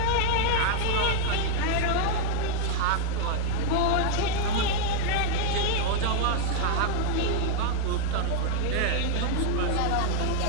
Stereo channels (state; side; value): different; both; correlation 0.00